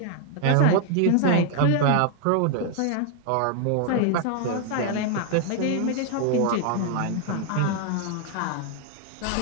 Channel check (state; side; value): different; both; correlation 0.00